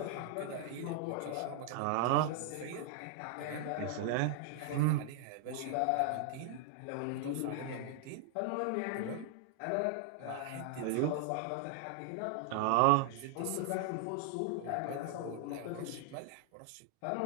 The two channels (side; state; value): both; different; correlation 0.00